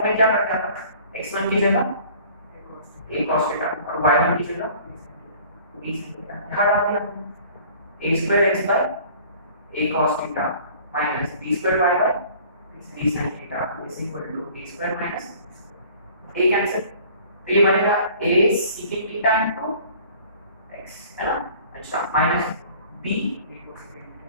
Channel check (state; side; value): inverted; both; correlation -0.50